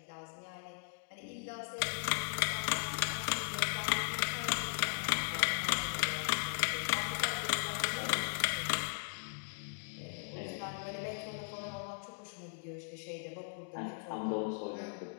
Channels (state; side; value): silent; right; digital silence